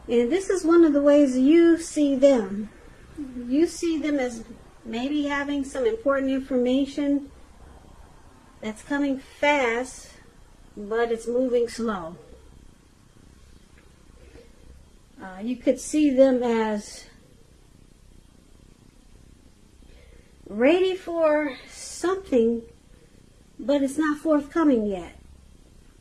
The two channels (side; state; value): both; identical; correlation 1.00